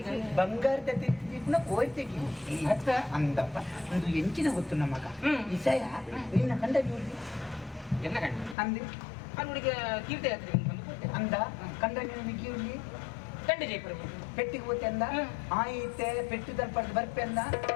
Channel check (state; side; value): drops out; right; at 8.6 s